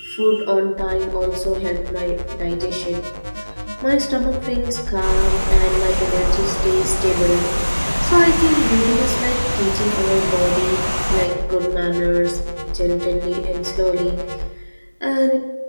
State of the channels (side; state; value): both; inverted; correlation -1.00